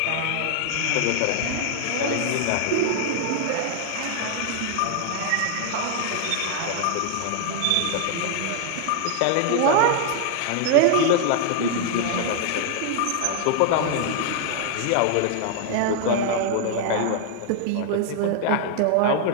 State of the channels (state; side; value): different; both; correlation 0.00